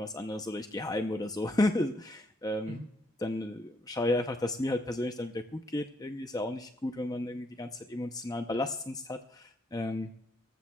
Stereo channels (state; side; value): normal; both; correlation 0.73